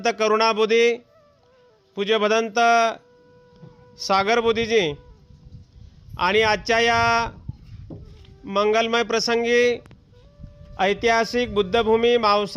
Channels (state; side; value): identical; both; correlation 1.00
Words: करुणा बुद्धी, पूज्य भदंत सागर बुद्धीजी आणि आजच्या या मंगलमय प्रसंगी ऐतिहासिक बुद्धभूमी